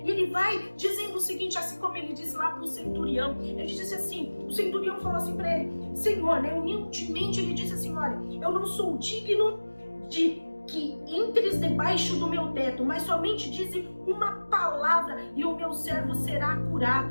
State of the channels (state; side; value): inverted; both; correlation -1.00